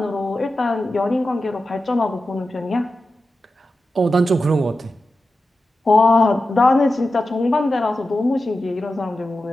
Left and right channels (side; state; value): both; normal; correlation 0.92